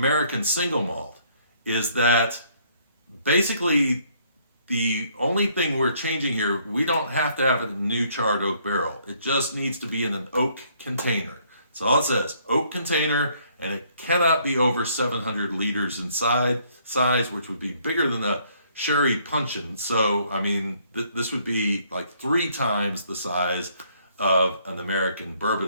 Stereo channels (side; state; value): both; inverted; correlation -0.65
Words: single malt is that basically the only thing we're changing here, we don't have to have a new charred oak barrel. It just needs to be in an oak container. That's all it says, oak container, and it cannot be over 700 liters in size, which would be bigger than a sherry puncheon. So, I mean, this would be like 3 times the size of an American